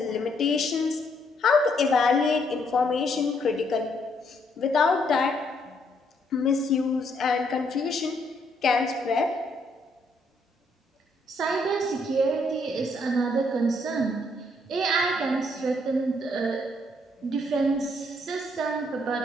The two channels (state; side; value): normal; both; correlation 0.71